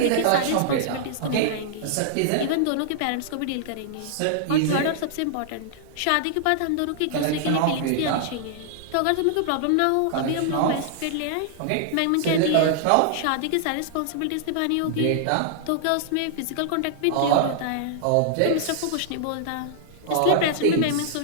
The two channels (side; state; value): both; different; correlation -0.01